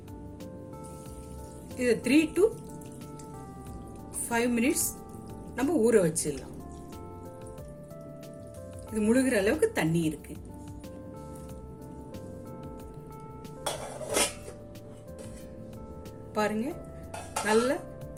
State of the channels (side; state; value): both; identical; correlation 1.00